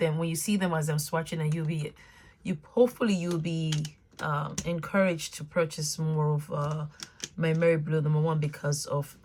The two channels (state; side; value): identical; both; correlation 1.00